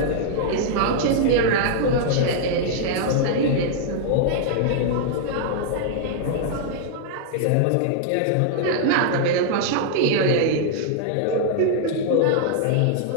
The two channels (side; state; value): both; different; correlation -0.01